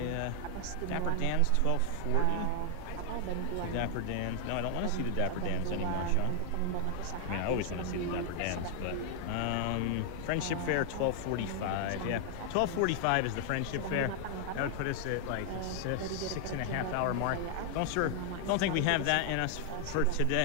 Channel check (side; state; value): both; different; correlation 0.00